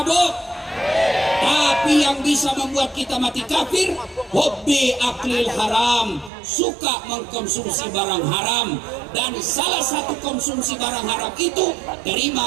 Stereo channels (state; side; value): drops out; left; at 6.3 s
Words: Tapi yang bisa membuat kita mati kafir, hobi aklil haram, suka mengkonsumsi barang haram. Dan salah satu konsumsi barang haram itu